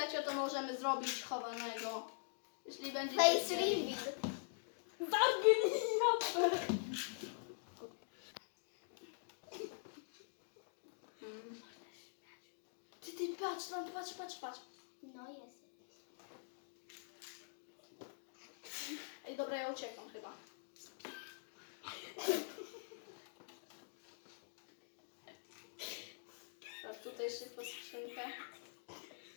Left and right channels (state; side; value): silent; right; digital silence